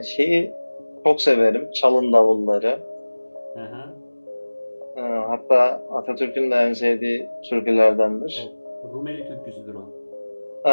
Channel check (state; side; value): inverted; both; correlation -1.00